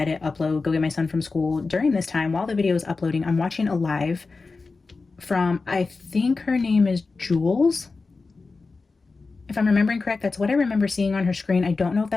upload, go get my son from school. During this time, while the video is uploading, I'm watching a live from, I think her name is Jules. If I'm remembering correct, that's what I remember seeing on her screen. I don't know if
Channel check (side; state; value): right; quieter; 4.1 dB